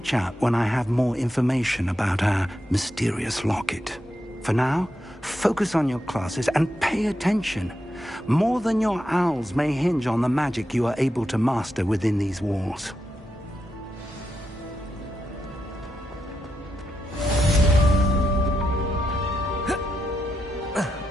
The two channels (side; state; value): both; normal; correlation 0.85